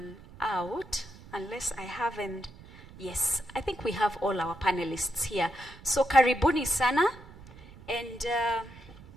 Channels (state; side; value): noise; right; rumble, 19 dB below the sound